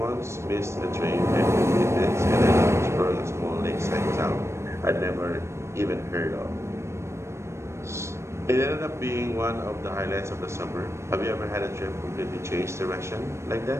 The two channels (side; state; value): left; late; 0.13 ms